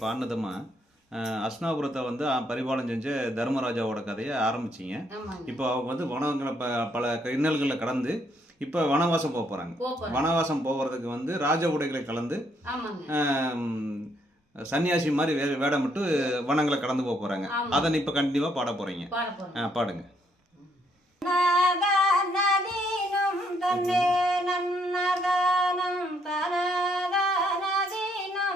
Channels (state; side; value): normal; both; correlation 0.71